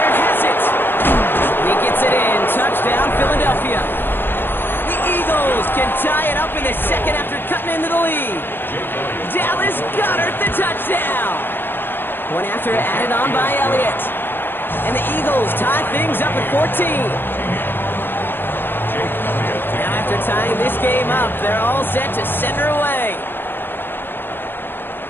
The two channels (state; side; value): late; right; 0.10 ms